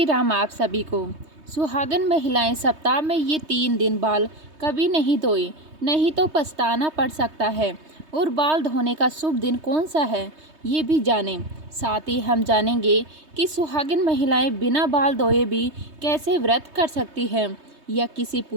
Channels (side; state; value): left; late; 3.2 ms